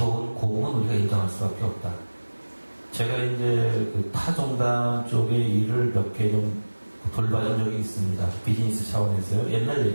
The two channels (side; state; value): both; inverted; correlation -1.00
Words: 공은 우리가 인정할 수밖에 없다. 제가 이제 그 타종단 쪽의 일을 몇 개 좀 돌봐준 적이 있습니다. 비즈니스 차원에서요. 옛날